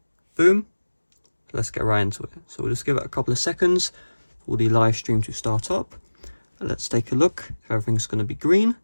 Boom. Let's get right into it. So we'll just give it a couple of seconds for the live stream to start up. And let's take a look if everything's going to be green.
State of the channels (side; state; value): both; inverted; correlation -1.00